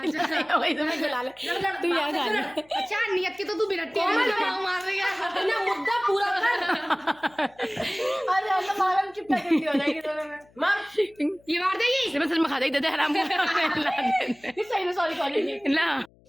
खिलाई होगी तो मैं खिला ले तू यहाँ खा ले अच्छा नियत की तो तू बिरट्टी मार रही है ना मुद्दा पूरा कर अरे हम तो मारम चिपटा करती हो जाएगी दोनों में मार ये मार देगी सिमरन सच में खा देगी दे हराम को सही में सॉरी सॉरी ना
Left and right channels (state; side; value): noise; left; hum, 30 dB below the sound